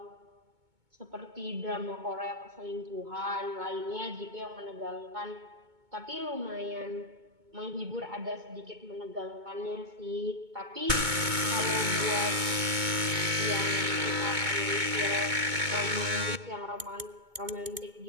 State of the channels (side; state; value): left; late; 2.2 ms